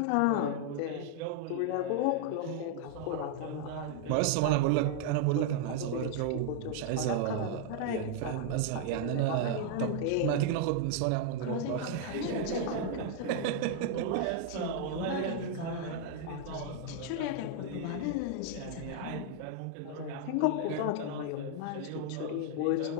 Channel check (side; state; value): both; different; correlation 0.00